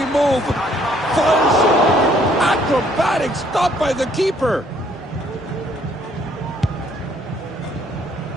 move. Fires it. Acrobatic stop by the keeper.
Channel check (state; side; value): normal; both; correlation 0.64